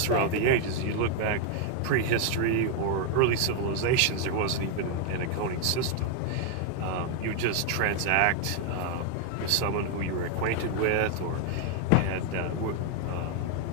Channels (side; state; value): both; different; correlation 0.00